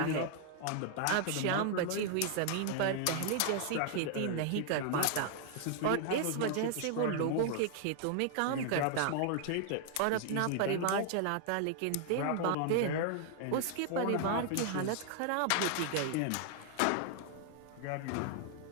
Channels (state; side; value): different; both; correlation 0.00